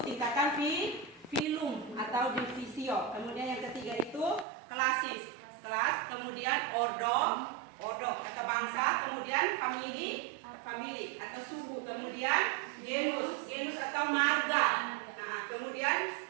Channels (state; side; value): drops out; left; at 4.5 s